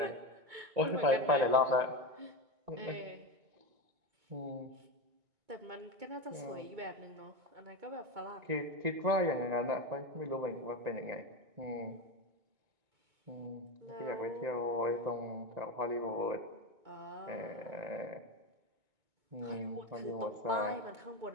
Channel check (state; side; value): late; left; 2.2 ms